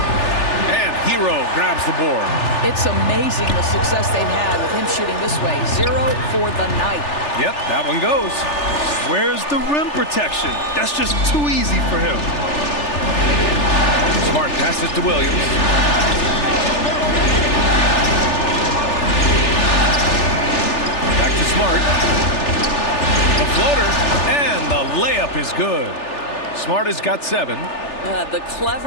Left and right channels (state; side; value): late; right; 3.4 ms